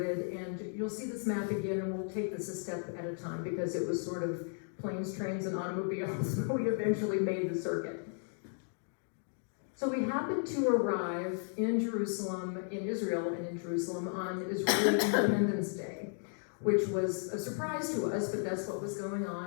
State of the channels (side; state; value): right; silent; 55 dB below the other